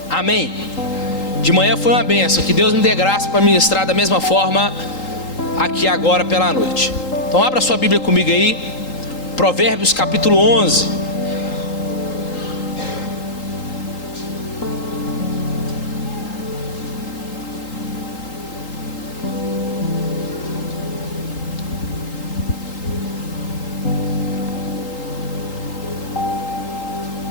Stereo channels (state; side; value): late; right; 3.8 ms